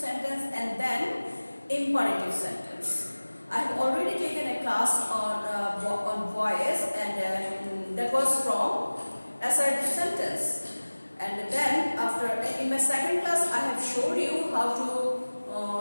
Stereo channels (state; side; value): inverted; both; correlation -1.00